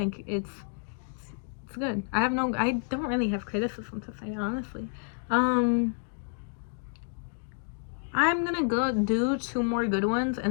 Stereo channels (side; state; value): right; silent; 58 dB below the other